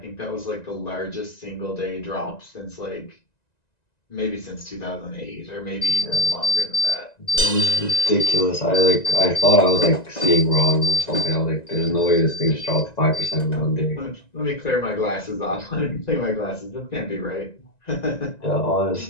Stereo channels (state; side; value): late; right; 1.9 ms